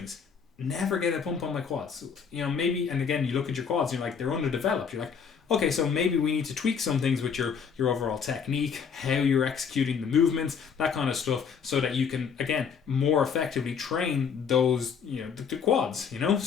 never get a pump on my quads. Maybe, and again, you look at your quads, you're like, they're underdeveloped. You're like, okay, so maybe we need to tweak some things with your overall technique, how you're executing the movements, that kind of stuff, so that you can, again, more effectively train those, the quads,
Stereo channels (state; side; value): quieter; right; 6.6 dB